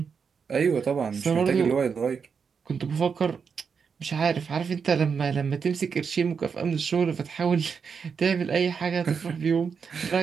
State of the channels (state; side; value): quieter; left; 6.1 dB